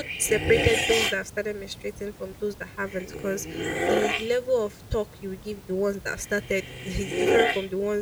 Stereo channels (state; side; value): identical; both; correlation 1.00